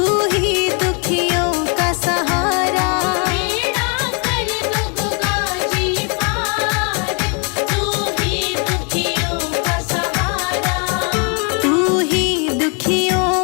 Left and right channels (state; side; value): quieter; right; 36.0 dB